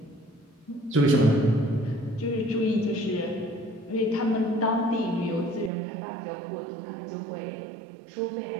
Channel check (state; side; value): drops out; left; at 5.7 s